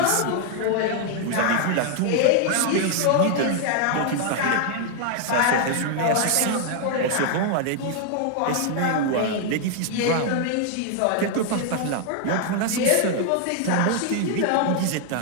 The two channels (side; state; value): both; different; correlation 0.00